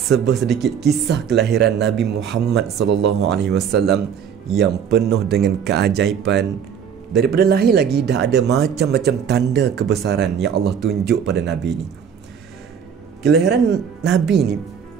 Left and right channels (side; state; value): left; quieter; 7.7 dB